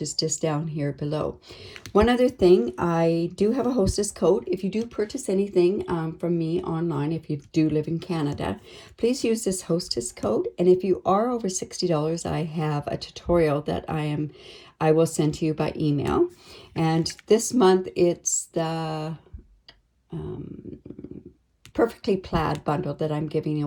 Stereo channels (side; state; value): both; identical; correlation 1.00